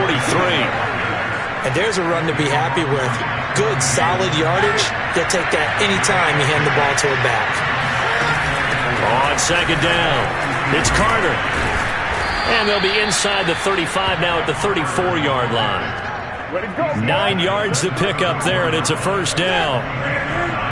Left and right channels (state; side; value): identical; both; correlation 1.00